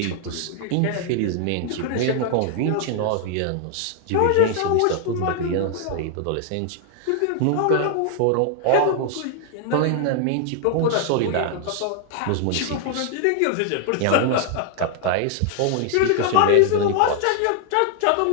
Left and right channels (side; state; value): both; different; correlation 0.00